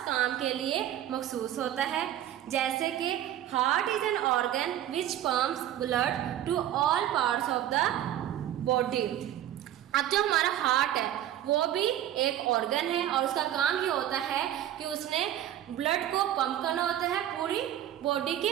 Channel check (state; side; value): quieter; left; 11.9 dB